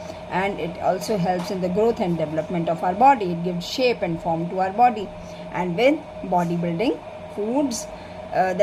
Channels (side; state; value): both; identical; correlation 1.00